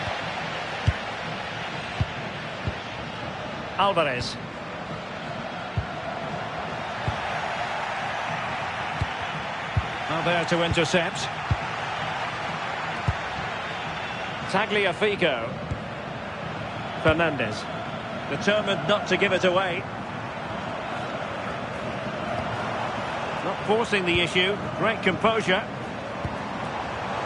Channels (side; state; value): both; identical; correlation 1.00